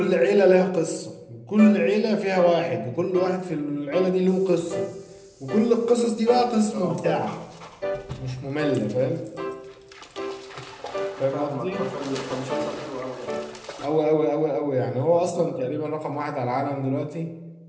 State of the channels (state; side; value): identical; both; correlation 1.00